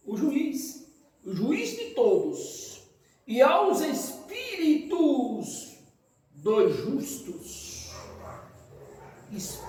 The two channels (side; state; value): both; identical; correlation 1.00